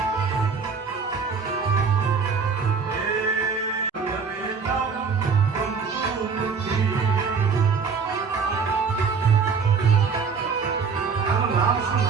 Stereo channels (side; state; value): left; quieter; 5.4 dB